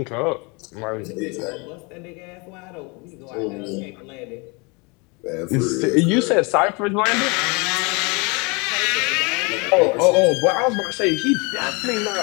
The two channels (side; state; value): right; quieter; 29.6 dB